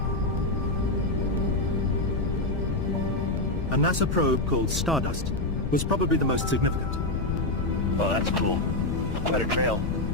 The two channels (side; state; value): left; noise; rumble, 2 dB below the sound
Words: A NASA probe called Stardust was probably the most significant. Oh, that's cool. Quite a trail.